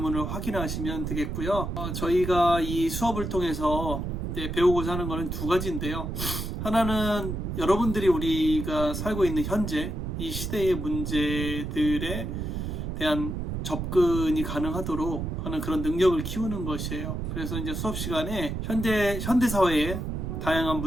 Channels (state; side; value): noise; right; rumble, 4 dB below the sound